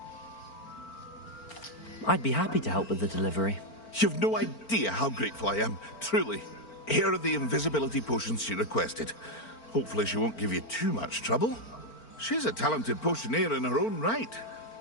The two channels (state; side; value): late; right; 4.4 ms